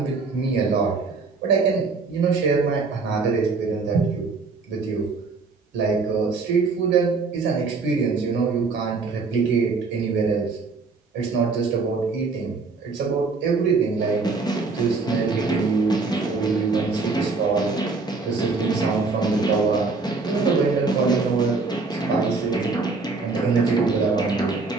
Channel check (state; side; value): quieter; left; 4.2 dB